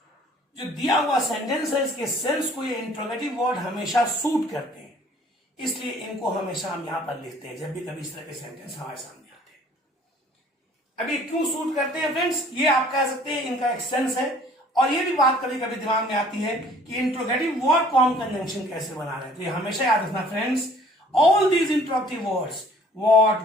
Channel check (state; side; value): normal; both; correlation 0.55